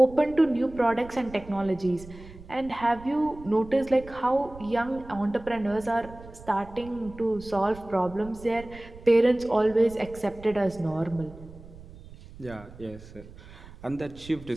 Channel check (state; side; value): noise; right; rumble, 18 dB below the sound